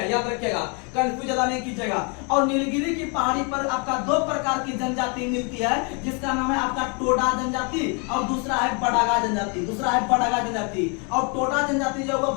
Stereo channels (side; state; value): right; quieter; 35.0 dB